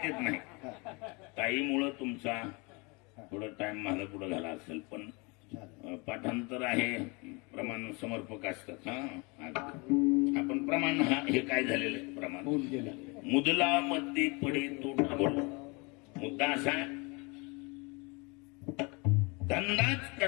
नाही. ताईमुळं तुमचा थोडा टाइम माझा पुढे झाला असेल, पण पाठांतर आहे, प्रमाण समर्पक असतात. आपण प्रमाण हे काय झालेलं आहे प्रमाण. मुदला मध्ये पडे तो ढाबळ. मुद्दा असा धंदाच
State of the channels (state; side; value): quieter; right; 29.0 dB